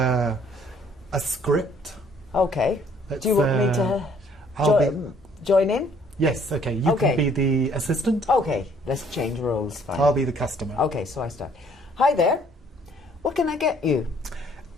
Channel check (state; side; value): normal; both; correlation 0.61